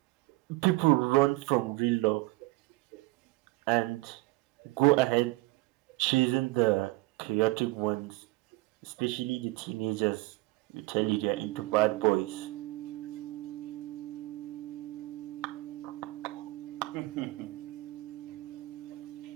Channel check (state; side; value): quieter; left; 20.7 dB